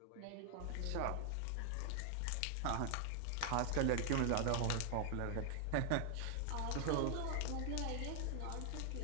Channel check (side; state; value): both; different; correlation 0.00